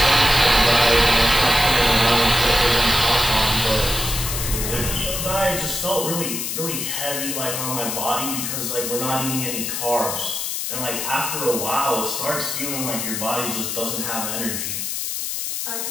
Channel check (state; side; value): noise; left; hiss, 3 dB below the sound